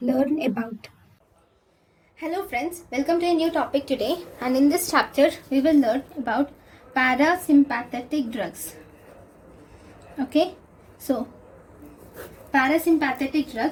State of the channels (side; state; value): both; identical; correlation 1.00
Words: about. Hello friends, welcome to a new topic today, and in this chapter we will learn about parasympathetic drugs. Okay, so parasympathetic